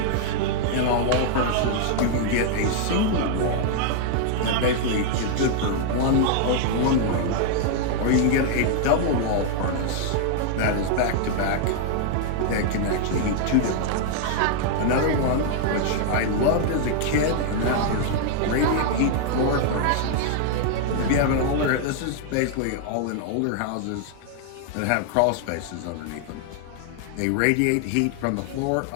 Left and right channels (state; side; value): different; both; correlation -0.01